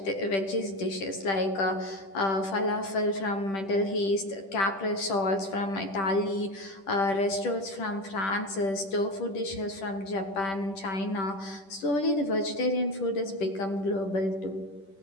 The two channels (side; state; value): right; late; 10 ms